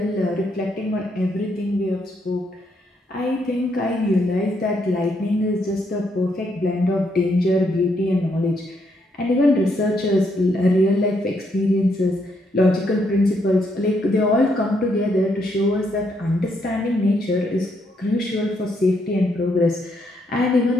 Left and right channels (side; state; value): both; normal; correlation 0.75